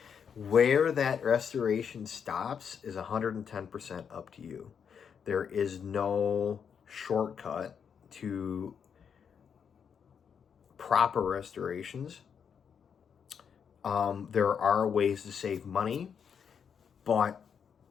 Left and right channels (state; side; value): quieter; right; 7.2 dB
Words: Where that restoration stops is 110% up to you. There is no shortcut to proper restorations. There are ways to save money, but